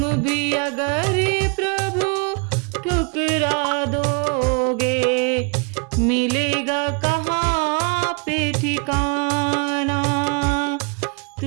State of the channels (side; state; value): left; quieter; 34.4 dB